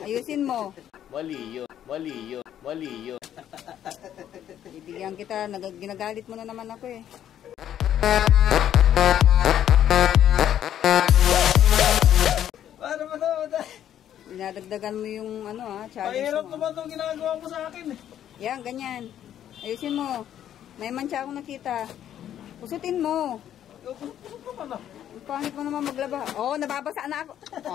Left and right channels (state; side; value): quieter; right; 10.6 dB